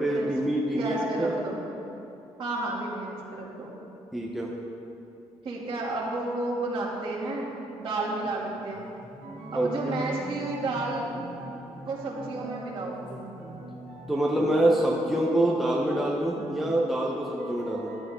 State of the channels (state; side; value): normal; both; correlation 0.77